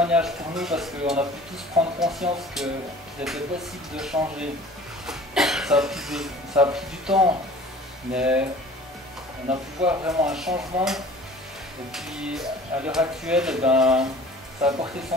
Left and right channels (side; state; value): both; normal; correlation 0.46